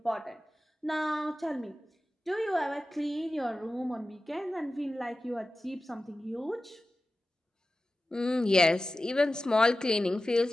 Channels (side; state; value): both; normal; correlation 0.95